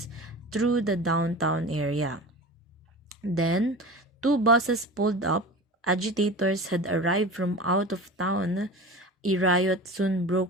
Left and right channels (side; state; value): both; normal; correlation 0.33